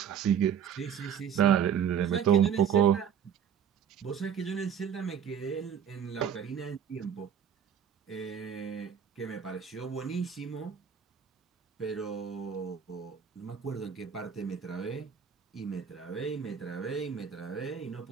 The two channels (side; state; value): left; quieter; 8.1 dB